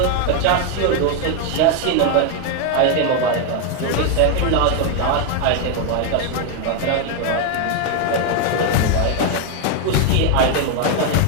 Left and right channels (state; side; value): different; both; correlation 0.01